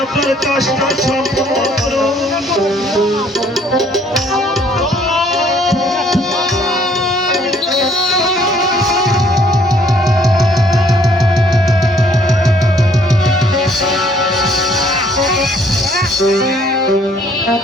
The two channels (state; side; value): normal; both; correlation 0.62